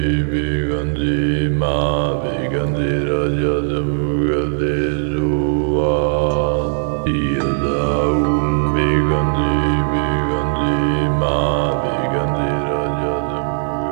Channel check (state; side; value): silent; left; digital silence